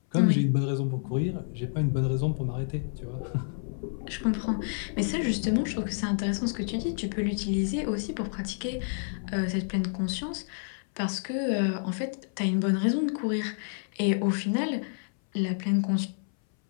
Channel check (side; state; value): right; silent; 59 dB below the other